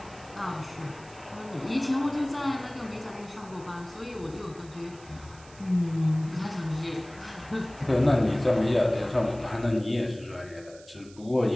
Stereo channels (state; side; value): noise; right; hiss, 23 dB below the sound